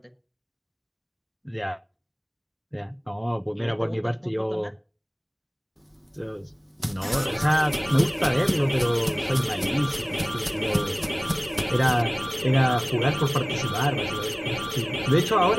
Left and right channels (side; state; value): both; identical; correlation 1.00